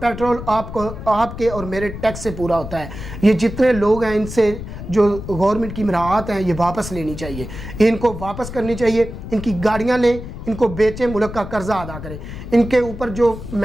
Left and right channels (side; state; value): left; noise; rumble, 10 dB below the sound